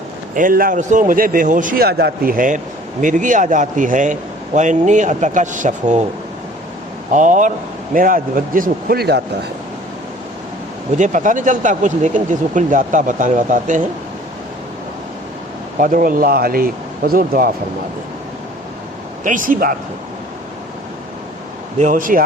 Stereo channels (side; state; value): both; normal; correlation 0.51